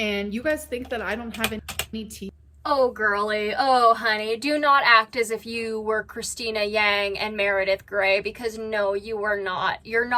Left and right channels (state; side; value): identical; both; correlation 1.00